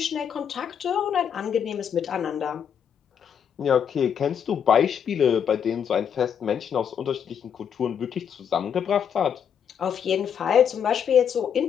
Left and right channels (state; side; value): quieter; right; 8.0 dB